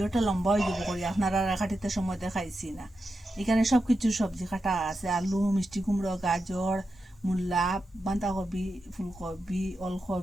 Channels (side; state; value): both; normal; correlation 0.89